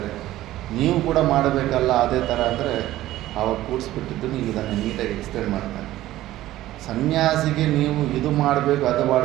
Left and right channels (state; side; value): quieter; left; 15.0 dB